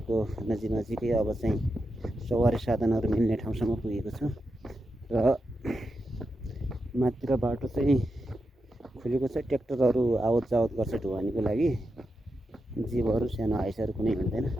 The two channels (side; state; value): both; normal; correlation 0.87